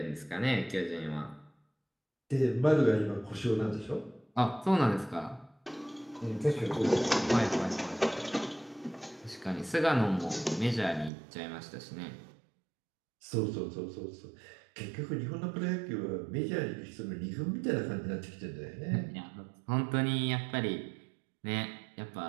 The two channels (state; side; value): drops out; left; at 11.1 s